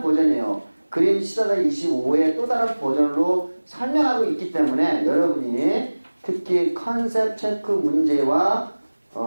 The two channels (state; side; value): inverted; both; correlation -1.00